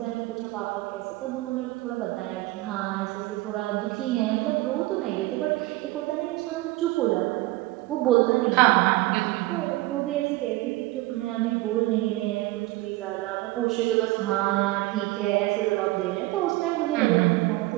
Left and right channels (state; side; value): quieter; left; 19.5 dB